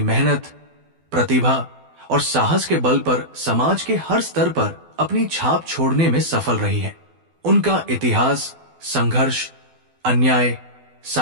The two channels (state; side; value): late; left; 12 ms